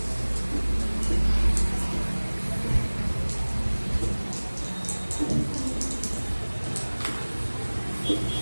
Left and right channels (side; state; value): both; inverted; correlation -1.00